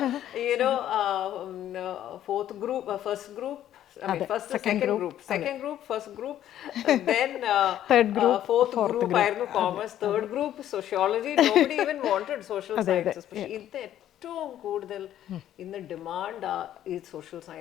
Fourth group, first group, second group, first group, then third group, fourth group ആയിരുന്നു commerce, third group sociology. Nobody even wanted social sciences. പക്ഷേ ഇത് ഏറ്റവും കൂടുതൽ ഇന്ന് ഡിമാൻഡ് ഈ സോഷ്യൽ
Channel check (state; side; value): quieter; right; 11.7 dB